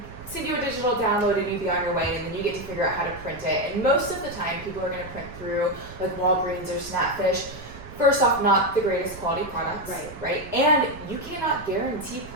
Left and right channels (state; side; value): noise; right; rumble, 15 dB below the sound